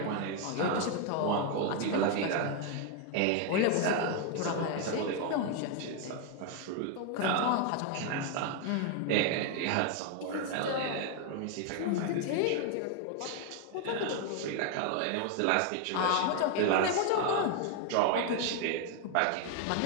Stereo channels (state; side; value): different; both; correlation 0.01